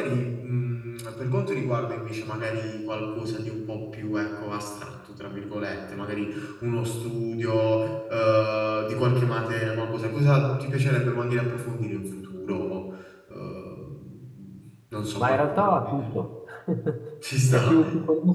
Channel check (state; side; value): identical; both; correlation 1.00